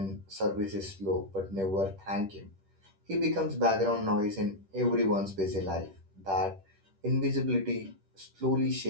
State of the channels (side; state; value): left; late; 10 ms